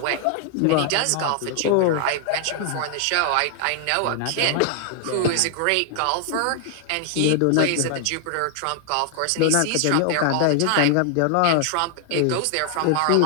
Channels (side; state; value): both; different; correlation 0.00